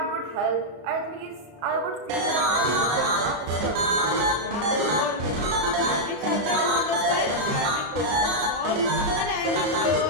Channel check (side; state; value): left; late; 34 ms